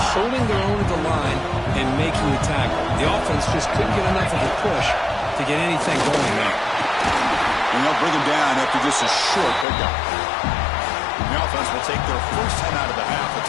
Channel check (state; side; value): drops out; right; at 9.7 s